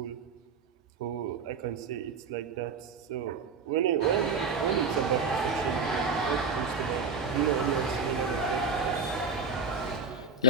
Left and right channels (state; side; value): quieter; left; 5.6 dB